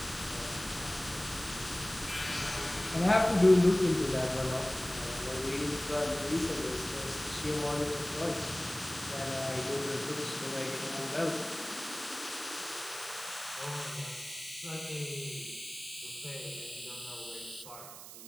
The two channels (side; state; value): right; noise; hiss, 13 dB below the sound